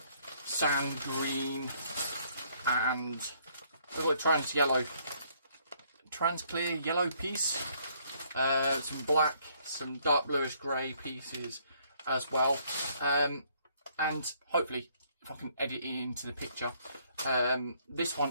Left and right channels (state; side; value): inverted; both; correlation -0.66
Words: sand green and a trans-clear yellow piece, some black, some dark bluish grey pieces as well, and hopefully if I can edit it into the picture, this